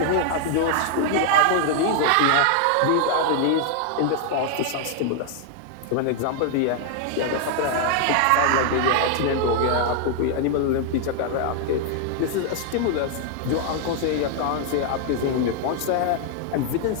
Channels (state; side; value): different; both; correlation 0.00